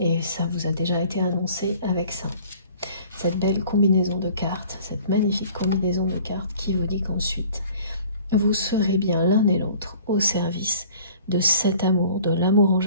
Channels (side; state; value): both; inverted; correlation -0.49